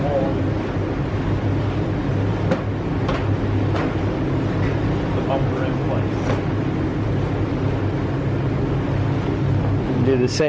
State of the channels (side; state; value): both; identical; correlation 1.00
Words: hold the bumper in place. Do the